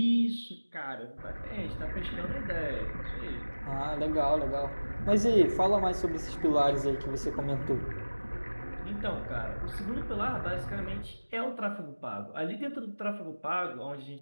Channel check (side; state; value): both; inverted; correlation -1.00